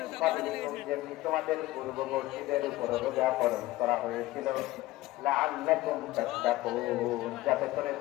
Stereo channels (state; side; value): quieter; right; 17.5 dB